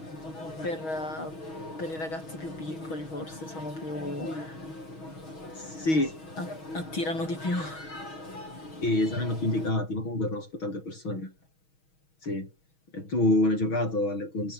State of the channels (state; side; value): late; right; 6.3 ms